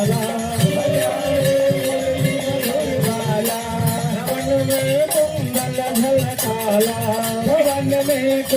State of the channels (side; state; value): both; identical; correlation 1.00